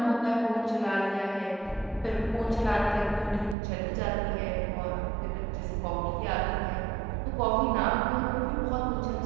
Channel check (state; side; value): drops out; left; at 3.6 s